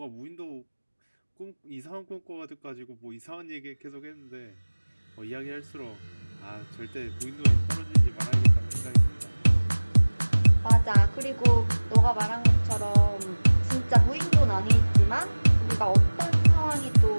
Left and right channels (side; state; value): both; inverted; correlation -1.00